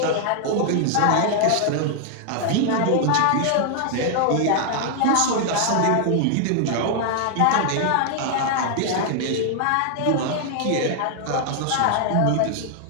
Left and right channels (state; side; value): different; both; correlation 0.00